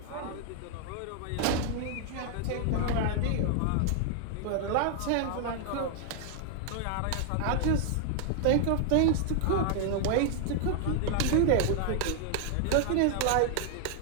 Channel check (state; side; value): different; both; correlation 0.00